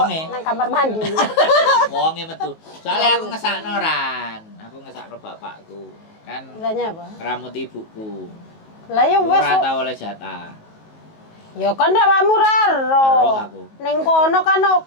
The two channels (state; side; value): late; right; 19 ms